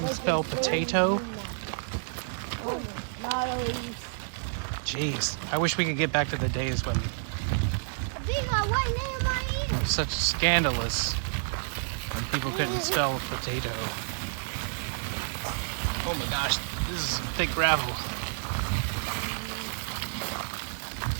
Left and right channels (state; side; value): silent; left; 58 dB below the other